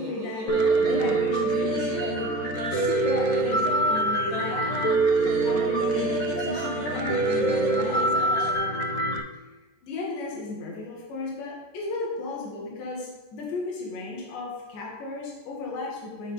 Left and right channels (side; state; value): right; late; 14 ms